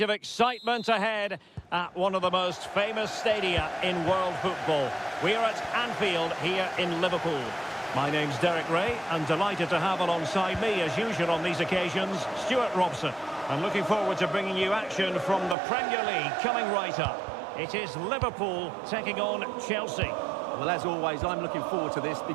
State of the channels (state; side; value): drops out; left; at 15.6 s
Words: excitement ahead at one of the most famous stadia in world football. We are at Anfield here in Liverpool. My name's Derek Ray, and delighted to have alongside me, as usual on these occasions, Stuart Robson. And looking forward to bringing you action from the Premier League coming right up. It is Liverpool taking on Chelsea. Well, as always, I'm looking forward to this